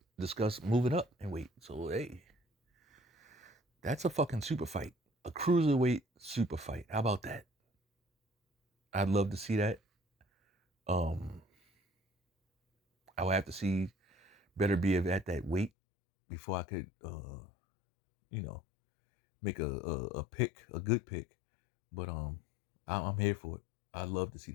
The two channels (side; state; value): right; drops out; at 15.7 s